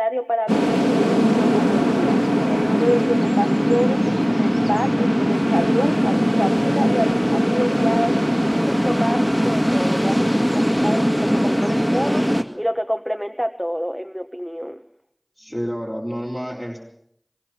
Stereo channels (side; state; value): both; identical; correlation 1.00